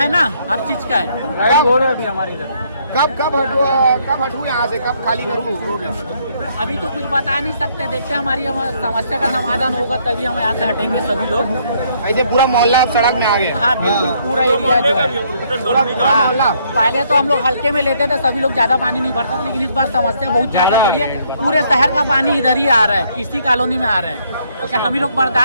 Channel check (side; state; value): both; inverted; correlation -0.68